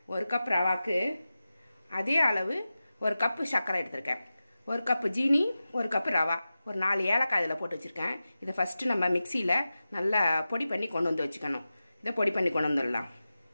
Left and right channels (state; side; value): inverted; both; correlation -0.94